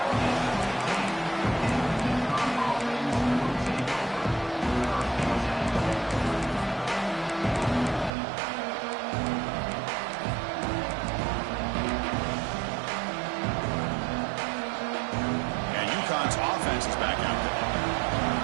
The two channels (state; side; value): drops out; left; at 8.1 s